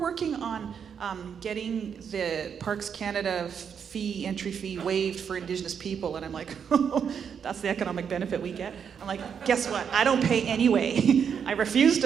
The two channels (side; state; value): left; quieter; 7.3 dB